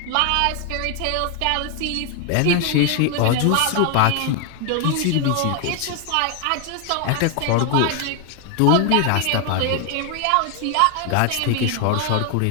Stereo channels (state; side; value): different; both; correlation 0.01